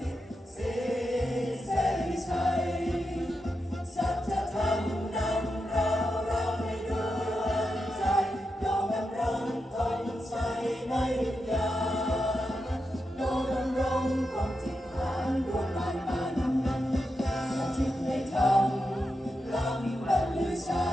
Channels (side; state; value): both; normal; correlation 0.87